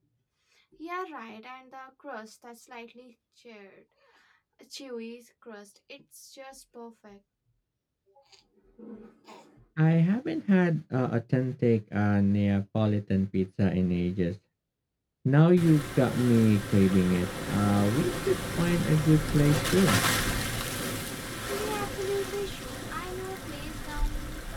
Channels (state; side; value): identical; both; correlation 1.00